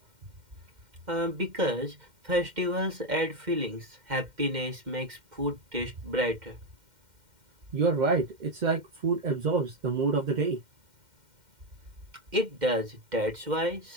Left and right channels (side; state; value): left; late; 2.1 ms